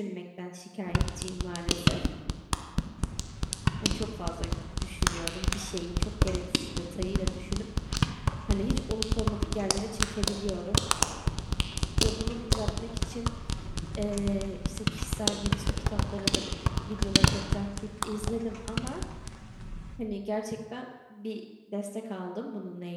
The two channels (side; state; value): both; identical; correlation 1.00